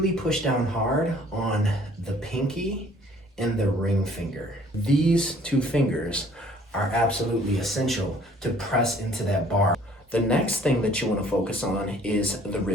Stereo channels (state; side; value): normal; both; correlation 0.56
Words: push down hard on the pinky and the ring finger. These two fingers are absolutely essential to press into that bar. The next thing that you want to focus on is the